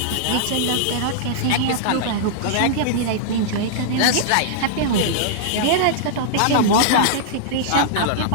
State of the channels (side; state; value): both; different; correlation -0.02